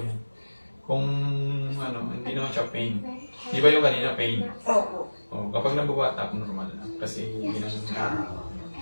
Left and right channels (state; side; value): inverted; both; correlation -1.00